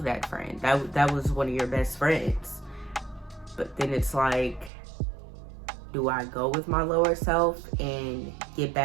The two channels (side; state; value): left; drops out; at 4.7 s